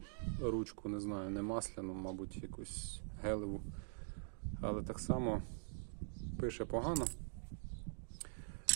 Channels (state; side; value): silent; left; digital silence